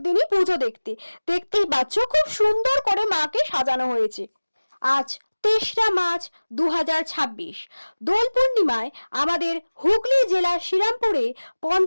পুজো দেখতে। দেখতেই পাচ্ছ খুব সুন্দর করে মাকে সাজানো হয়েছে। আজ 3রা মার্চ 2026। দোল পূর্ণিমায় আমাদের হুগলি জেলার শ্রীরামপুরে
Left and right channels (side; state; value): both; inverted; correlation -1.00